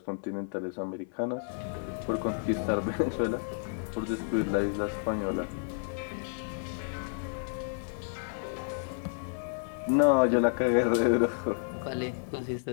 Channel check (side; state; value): right; silent; 57 dB below the other